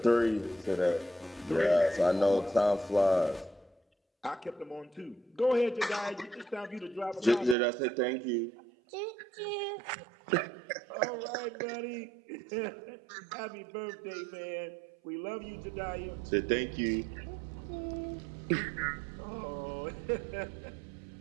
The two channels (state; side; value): drops out; left; at 7.6 s